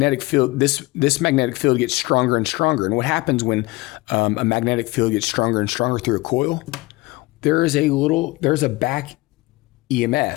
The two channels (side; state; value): right; quieter; 20.9 dB